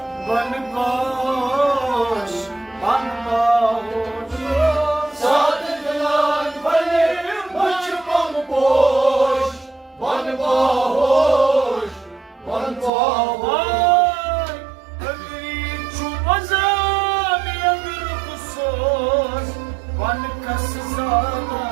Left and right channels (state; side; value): drops out; left; at 12.9 s